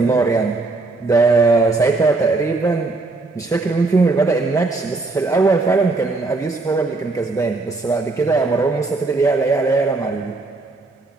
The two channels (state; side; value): quieter; left; 3.5 dB